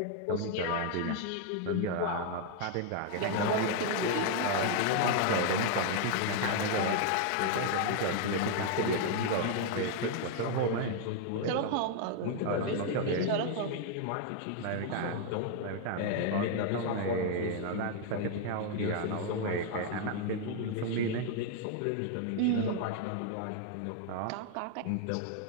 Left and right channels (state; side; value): different; both; correlation 0.00